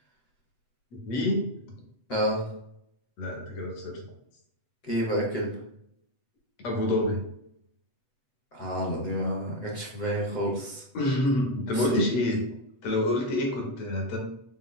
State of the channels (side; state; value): right; late; 8.1 ms